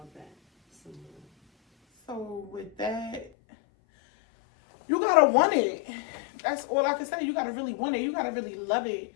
that some more. So with that, you gotta want it. That's all I can say. You gotta really want it. You gotta really love it.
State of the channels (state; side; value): drops out; right; at 3.3 s